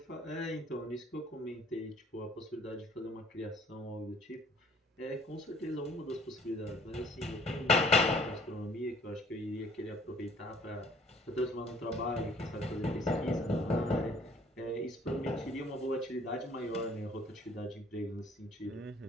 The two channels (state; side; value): normal; both; correlation 0.57